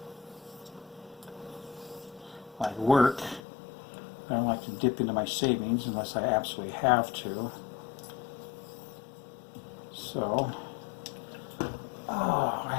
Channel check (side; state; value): right; drops out; at 3.4 s